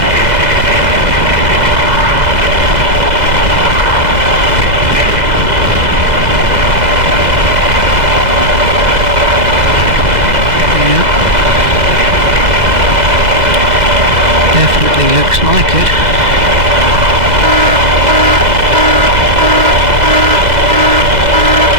Yeah. Definitely looks like it.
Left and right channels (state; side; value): late; left; 2.0 ms